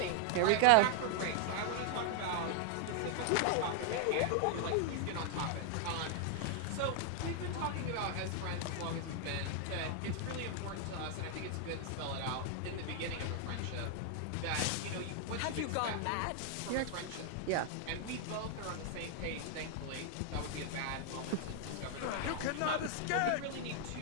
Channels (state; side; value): different; both; correlation 0.00